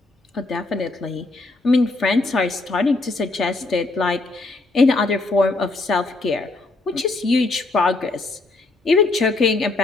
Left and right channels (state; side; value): quieter; right; 3.3 dB